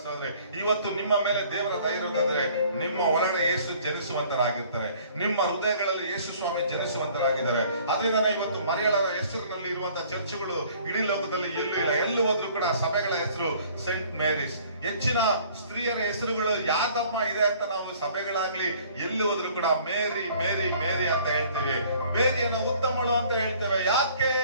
ಸಹೋದರಿ, ಇವತ್ತು ನಿಮ್ಮ ಮೇಲೆ ದೇವರ ದಯೆ ಇರೋದಾದ್ರೆ ನಿಮ್ಮ ಒಳಗಡೆ ಯೇಸು ಜನಿಸುವಂತರಾಗಿರ್ತಾರೆ, ನಿಮ್ಮ ಹೃದಯಗಳಲ್ಲಿ ಯೇಸು ಸ್ವಾಮಿ ಜನಿಸುವಂತರಾಗಿದ್ದಾರೆ. ಅದರಿಂದ ಇವತ್ತು ಮರಿಯಳರ ಹೆಸರಿನಲ್ಲಿ ಇರುವಂತಹ ಚರ್ಚ್ಗಳು ಇಡೀ ಲೋಕದಲ್ಲಿ ಎಲ್ಲೂ ಇಲ್ಲ. ಎಲ್ಲೂ ಹೋದ್ರು ಕೂಡ ಸಭೆಗಳ ಹೆಸರು ಸೇಂಟ್ ಮೇರೀಸ್. ಹೆಚ್ಚಿನ ಸ್ತ್ರೀಯರ ಹೆಸರುಗಳು ಯಾದಮ್ಮ ಇದೆ ಅಂತ ನಾವು ಸಭೆಗಳಾಗ್ಲಿ ಎಲ್ಲಿ ಹೋದ್ರು ಕೂಡ ಮೇರಿ ಮೇರಿ ಮೇರಿ ಅಂತ ಹೇಳ್ತೇವೆ. ಮೇರಿಯನ್ನು ಉತ್ತಮಳು ಅಂತ ಹೇಳ್ತೇವೆ. ಯಾಕೆ?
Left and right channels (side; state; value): both; inverted; correlation -0.55